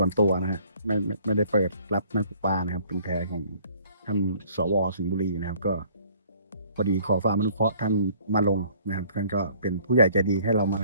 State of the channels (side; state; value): both; inverted; correlation -0.57